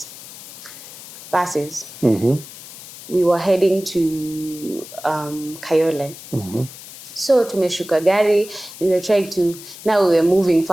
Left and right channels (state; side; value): noise; left; hiss, 15 dB below the sound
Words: buses. We were heading to Kayole. So tumeshuka gari, and we were trying to, now we were moving